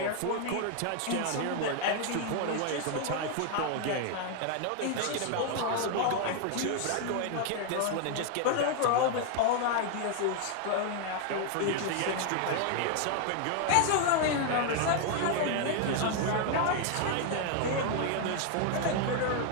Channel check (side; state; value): both; different; correlation 0.00